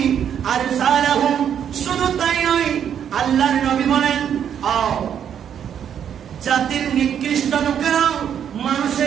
আরসালাহুম, শুধু তাই নয়, আল্লাহর নবী বলেন, জাতির নিকৃষ্ট লোকেরা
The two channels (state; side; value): quieter; left; 8.8 dB